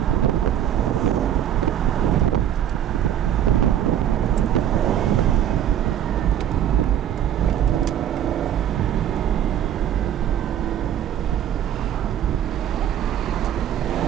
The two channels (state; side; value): quieter; left; 10.1 dB